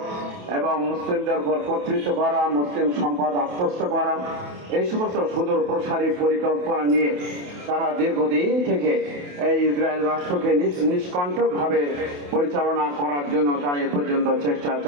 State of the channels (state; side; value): late; left; 28 ms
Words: এবং মুসলিমদের উপর কর্তৃত্ব করা, মুসলিম সম্পদ আত্মস্থ করা, এই সমস্ত সুদূর প্রসারী পরিকল্পনা নিয়ে তারা দীর্ঘদিন থেকে এই ইসরায়েল রাষ্ট্রকে নিষ্কণ্টকভাবে পরিচালনা করার জন্য তারা এ পর্যন্ত চেষ্টা